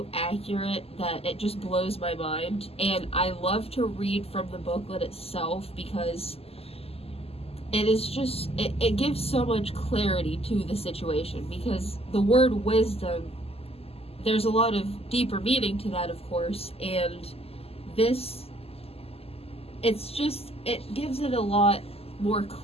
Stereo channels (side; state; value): right; late; 0.29 ms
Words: accurate that it just blows my mind. And I love to read from the booklet itself, because it is just, it gives so much clarity to the situation, because the word wisdom, there's a lot of deeper meaning to that, of course, and this, it's just, it gives it a lot more